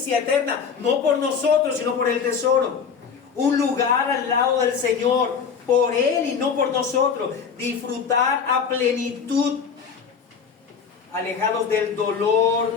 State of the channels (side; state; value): right; quieter; 6.3 dB